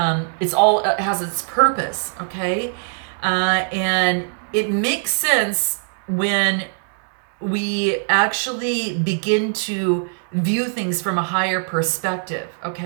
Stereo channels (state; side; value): silent; left; digital silence